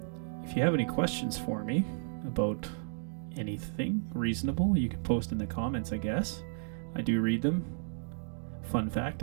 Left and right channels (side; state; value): left; silent; digital silence